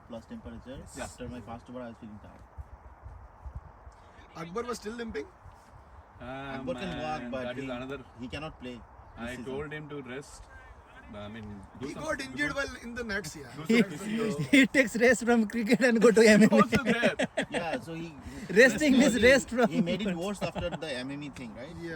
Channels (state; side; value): identical; both; correlation 1.00